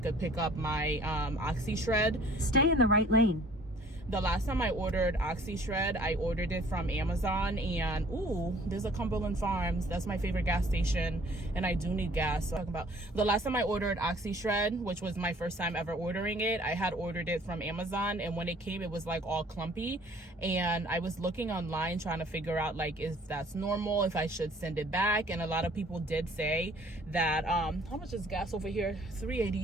could pick up my Oxyshred. Stay in the right lane. The last time I ordered Oxyshred, I ordered it from Amazon, and ooh, there's a Cumberland Farms. That's my favorite gas station, and I do need gas. So talking about the last time I ordered Oxyshred, which was my first time ever ordering it, I had ordered it from Amazon, and when it came, it was like all clumpy, and I was looking online trying to figure out like if that's normal, if I should send it back, and a lot of people did say that how much is gas over here?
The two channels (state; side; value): normal; both; correlation 0.54